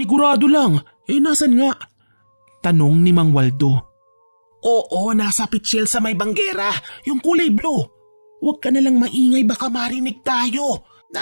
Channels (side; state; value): both; inverted; correlation -1.00